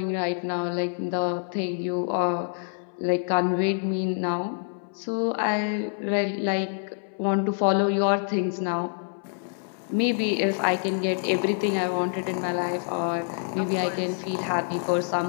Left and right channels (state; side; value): silent; right; 61 dB below the other